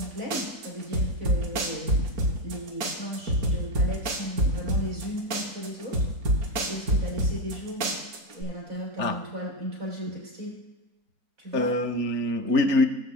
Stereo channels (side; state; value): left; late; 4.3 ms